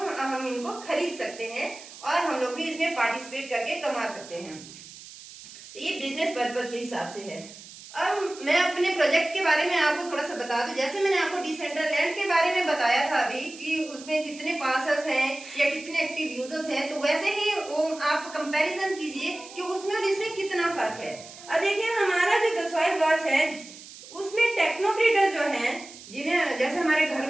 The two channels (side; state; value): right; noise; hiss, 17 dB below the sound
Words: इनको खरीद सकते हैं और हम लोग भी इसमें पार्टिसिपेट करके कमा सकते हैं। तो ये बिजनेस पर्पस के हिसाब से है। अब मैं अपने प्रोजेक्ट के बारे में आपको थोड़ा सा बता दूं। जैसे मैंने आपको डिसेंट्रलैंड के बारे में बताया था अभी कि उसमें कितने पार्सल्स हैं या कितने एक्टिव यूजर्स हैं, तो वैसे ही आप कंपैरिजन कीजिए कि उसमें और इसमें कितना फर्क है। अब देखिए हमारा जो द सॉइलवर्स है उसमें टेक्नोक्रेटर जो हैं, जिन्हें जैसे हमारे घर